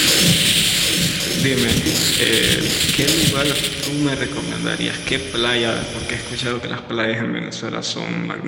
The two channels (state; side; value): identical; both; correlation 1.00